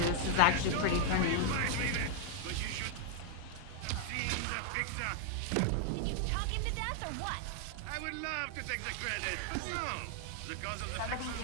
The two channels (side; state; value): both; different; correlation 0.00